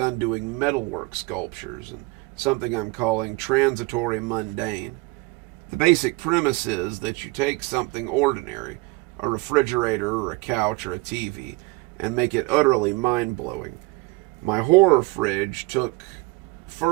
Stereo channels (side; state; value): left; quieter; 24.7 dB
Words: doing metalwork sculptures and something I'm calling transitory mundane. The basic premise is that you take something ordinary, a refrigerator or a couch or a TV, and make it utterly mind-blowing. My horror fridge took